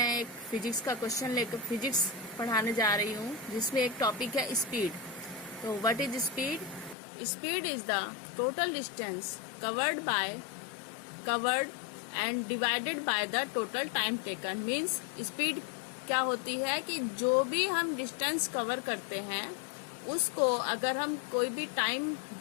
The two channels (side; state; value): right; drops out; at 7.0 s